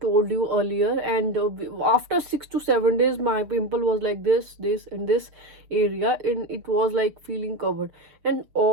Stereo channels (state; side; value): late; left; 6.7 ms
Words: you earlier, and after 6 to 7 days, my pimple was like this and this area, and it was like feeling covered, and